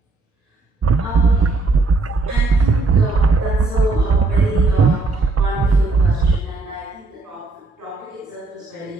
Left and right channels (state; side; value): quieter; left; 3.4 dB